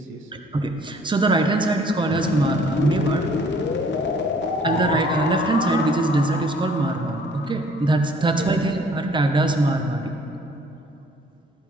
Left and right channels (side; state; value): both; normal; correlation 0.58